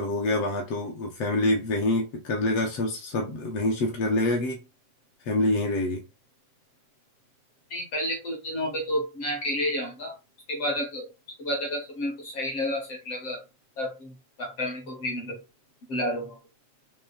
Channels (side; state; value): right; late; 7.6 ms